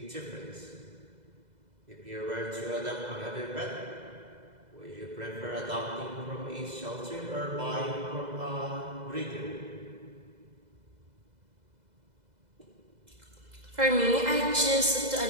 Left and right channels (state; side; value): late; left; 2.0 ms